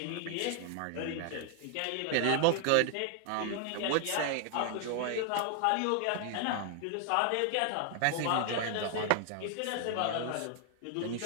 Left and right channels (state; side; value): different; both; correlation 0.00